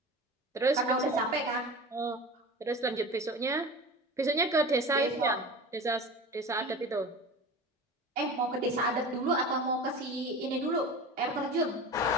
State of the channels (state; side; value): normal; both; correlation 0.33